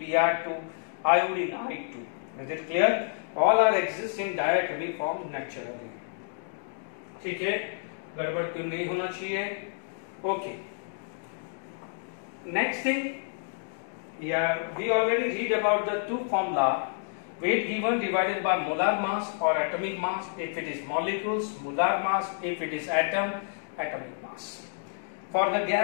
Br2, iodine, I2. Is it clear? All are exist in diatomic form naturally. ठीक है, गड़बड़ क्यों नहीं होना चाहिए? Okay. Next thing, yeah, we already read about the two formula. Weight given divided by molar mass or atomic mass if it is molecules, molar mass if it is atom, atomic mass. For the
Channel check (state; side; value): silent; right; digital silence